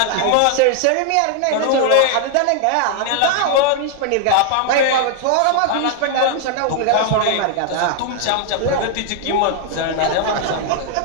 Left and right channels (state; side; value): different; both; correlation 0.00